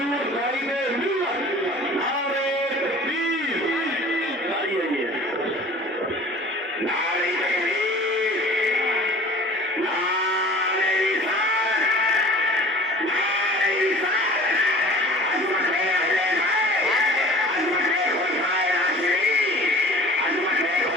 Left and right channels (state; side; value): normal; both; correlation 0.44